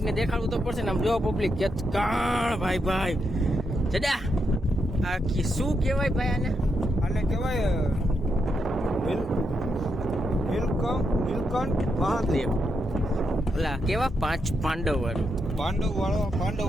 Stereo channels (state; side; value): normal; both; correlation 0.82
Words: ને દેખાડવું તો પડશે ને. આમ જો પબ્લિક કાણ ભાઈ ભાઈ જડા આ શું કહેવાય ભાઈ આને? આને કહેવાય નીલકંઠ મહાદેવ. ઓલા કેવા પાંડવ વાળું પાંડવ